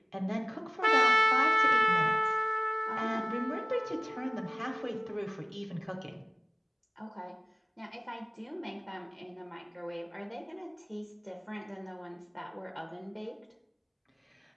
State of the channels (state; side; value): identical; both; correlation 1.00